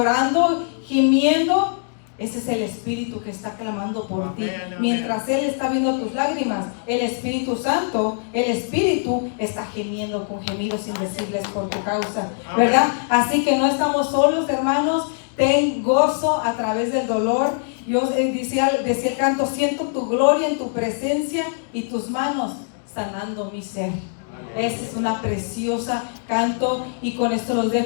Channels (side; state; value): right; silent; digital silence